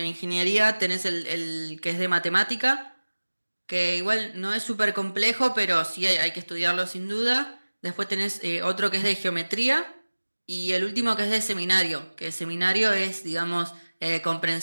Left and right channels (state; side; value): inverted; both; correlation -1.00